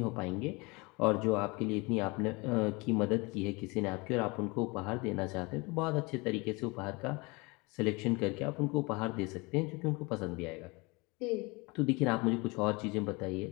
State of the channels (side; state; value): right; quieter; 26.4 dB